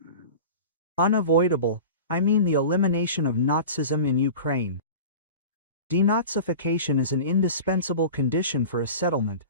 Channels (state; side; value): inverted; both; correlation -0.35